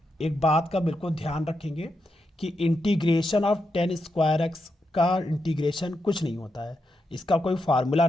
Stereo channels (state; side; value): normal; both; correlation 0.85